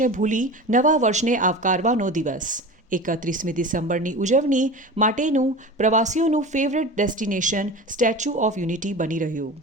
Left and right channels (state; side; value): normal; both; correlation 0.32